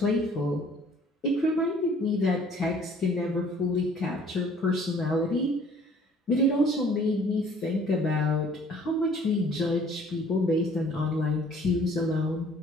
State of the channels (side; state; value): both; normal; correlation 0.55